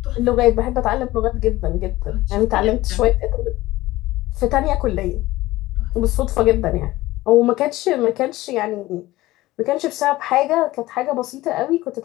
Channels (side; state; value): right; quieter; 17.7 dB